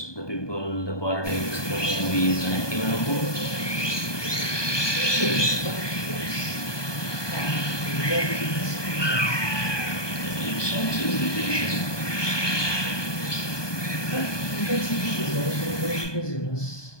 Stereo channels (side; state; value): right; late; 1.2 ms